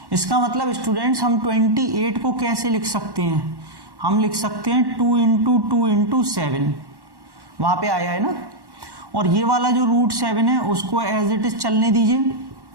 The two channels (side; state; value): left; late; 1.1 ms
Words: इसका मतलब स्टूडेंट्स हम 28 को कैसे लिख सकते हैं, हम लिख सकते हैं 2 इंटू 2 इंटू 7, वहां पे आया है ना। और ये वाला जो √7 है उसको एज इट इज चलने दीजिए।